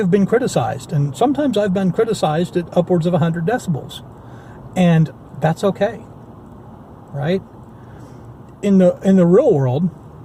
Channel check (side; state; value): both; identical; correlation 1.00